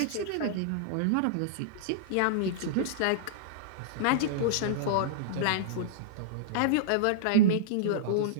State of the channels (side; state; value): both; different; correlation -0.02